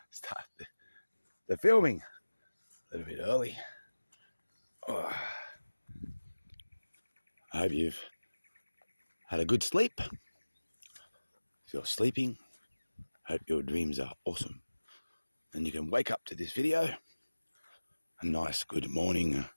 start the filming a little bit early. Oh, I hope you've had a good sleep. If you're sleeping, I hope your dreams are awesome. And you can wake up to this video. A nice good morning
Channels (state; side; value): inverted; both; correlation -1.00